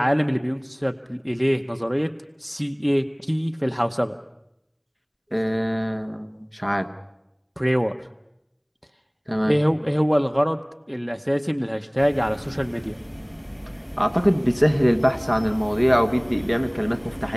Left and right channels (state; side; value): identical; both; correlation 1.00